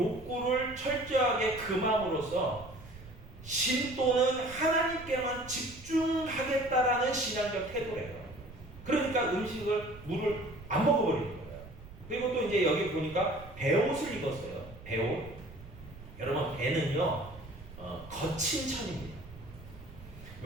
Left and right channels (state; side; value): noise; right; rumble, 17 dB below the sound